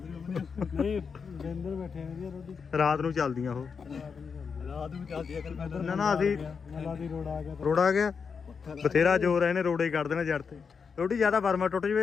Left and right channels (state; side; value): quieter; right; 5.8 dB